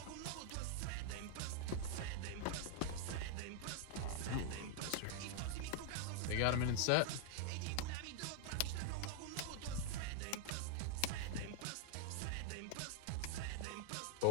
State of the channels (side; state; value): both; different; correlation 0.00